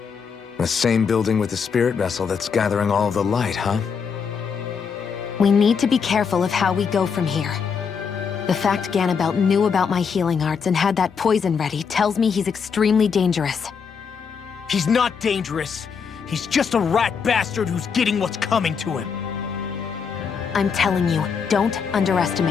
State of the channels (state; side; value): quieter; right; 6.2 dB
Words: The same building with the spirit vessel that's gathering all of the light, huh? We need to be careful of how we go from here. The fact Ganabelt knew about my healing arts and had that poison ready tells me he's extremely dangerous. He's not dangerous. He's just a rat bastard who's getting what's coming to him. I'm telling you, don't